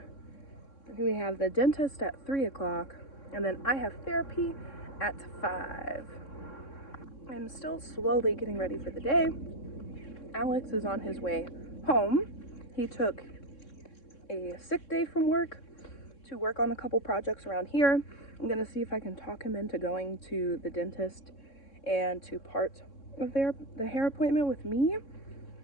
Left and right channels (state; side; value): late; right; 3.6 ms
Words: We have the dentist at 3 o'clock, and then I have therapy at 5. I'm still slowly getting ready for the day. Alex is on his way home. He took a sick day from work to work on a couple projects around here. I'm gonna see if I can talk him into going to the dentist and to part of the hair appointment with me,